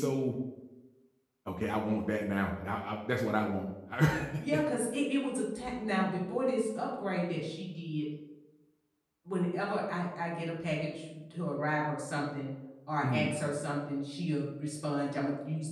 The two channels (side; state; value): both; identical; correlation 1.00